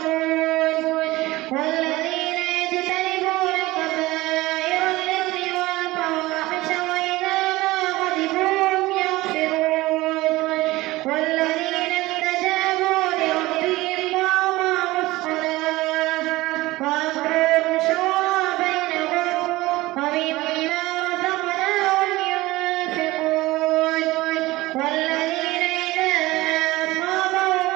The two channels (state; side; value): quieter; left; 19.2 dB